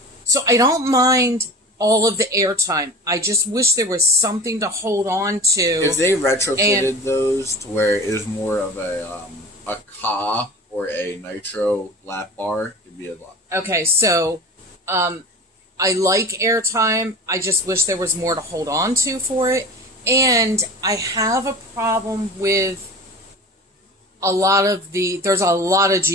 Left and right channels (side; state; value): both; normal; correlation 0.36